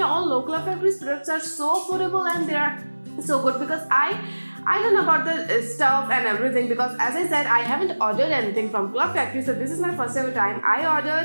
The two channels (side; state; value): both; inverted; correlation -1.00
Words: all know Club Factory's products are so affordable and they are so good, because I don't know about the stuff and everything, because as I said, I haven't ordered anything from Club Factory. So this is my first ever time I